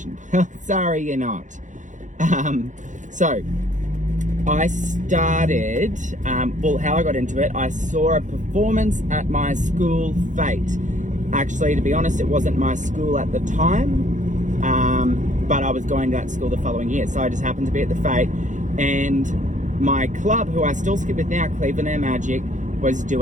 Well, sorry, you're not. So I started, how I got into it, I saw a performance at my school fete. Actually, to be honest, it wasn't my school at the time, but I was going to that school the following year. So I just happened to be at the fete, and my club, who I still skip with now, Cleveland Air Magic, was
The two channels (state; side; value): late; left; 0.36 ms